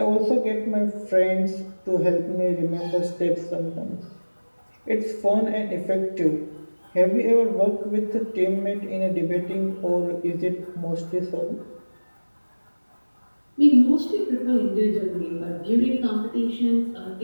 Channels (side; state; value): both; inverted; correlation -1.00